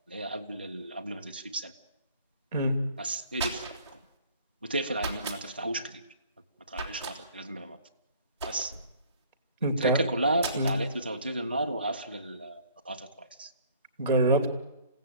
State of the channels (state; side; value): inverted; both; correlation -0.55